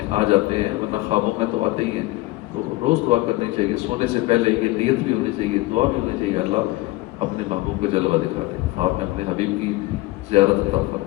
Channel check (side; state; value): right; quieter; 20.0 dB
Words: آ جاتے ہیں، ورنہ خوابوں میں تو آتے ہی ہیں۔ تو روز دعا کرنی چاہیے، سونے سے پہلے یہ نیت بھی ہونی چاہیے، دعا بھی ہونی چاہیے، اللہ اپنے محبوب کا جلوہ دکھا دے، خواب میں اپنے حبیب کی زیارت عطا